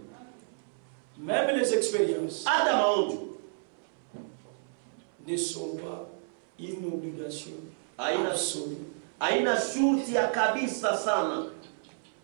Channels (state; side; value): silent; left; 57 dB below the other